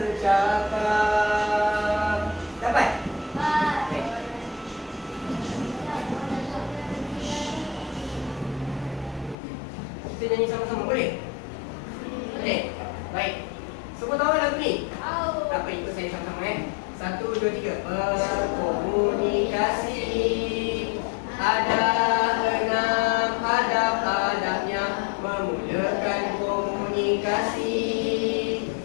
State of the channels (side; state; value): right; drops out; at 9.3 s